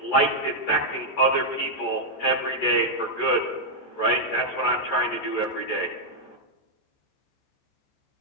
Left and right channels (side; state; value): right; late; 14 ms